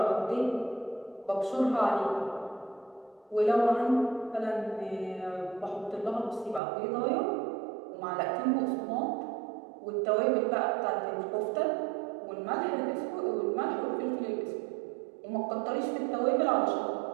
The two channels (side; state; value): left; drops out; at 6.6 s